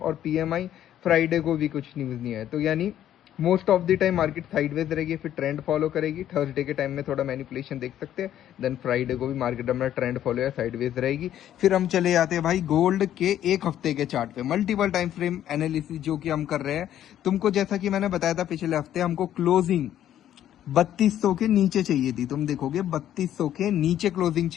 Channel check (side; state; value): right; quieter; 11.4 dB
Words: पीएमआई, फ्राइडे को भी कुछ न्यूज़ नहीं है। तो यानी most of the time market sideways रहेगी, फिर ट्रेंड फॉलो करेगी। थर्सडे के टाइम में थोड़ा मैनिपुलेशन देख सकते हैं, देन फ्राइडे को भी मार्केट अपना ट्रेंड फॉलो या साइडवेज रहेगी। फिर हम चले जाते हैं भाई गोल्ड के एक हफ्ते के चार्ट पे, मल्टीपल टाइम फ्रेम एनालिसिस जो कि हम कर रहे हैं। तुमको जैसा कि मैंने बताया था पिछले हफ्ते, हमको क्लोजिंग 3200 के नीचे चाहिए थी। तुम देखोगे 3200 के नीचे क्लोजिंग